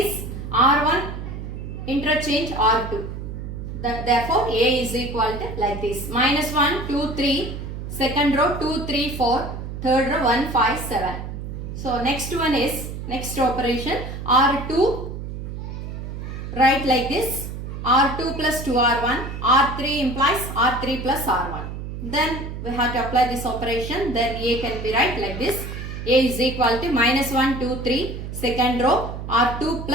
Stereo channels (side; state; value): right; noise; hum, 7 dB below the sound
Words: R1 interchange R2. Therefore A is equal to like this, minus 1, 2, 3, second row 2, 3, 4, third row 1, 5, 7. So next one is, next operation R2, write like this, R2 plus 2R1, R3 implies R3 plus R1. Then we have to apply this operation, then A can be right like this, A is equal to minus 1, 2, 3, second row R2